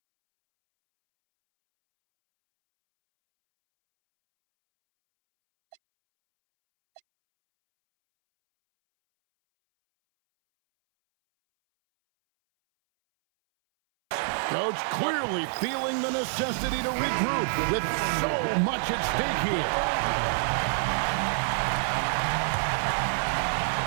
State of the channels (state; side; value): silent; left; 60 dB below the other